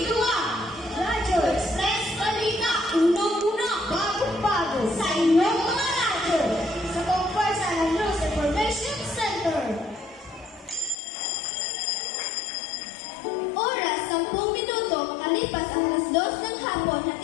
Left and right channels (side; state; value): right; drops out; at 11.0 s